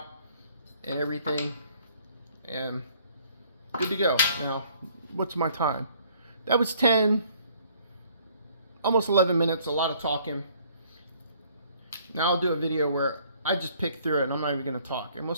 and everything, and good to go. Now, what's my time? That was 10, almost 11 minutes, a lot of talking. Now I'll do a video where I just pick through it and I'm not even gonna talk, and we'll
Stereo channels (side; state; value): both; inverted; correlation -0.60